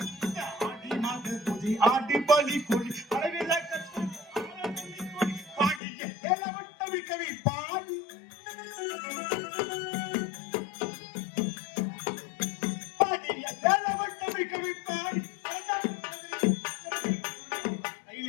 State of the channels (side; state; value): right; drops out; at 5.8 s